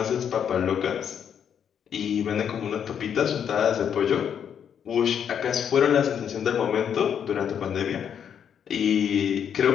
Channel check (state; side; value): quieter; right; 8.3 dB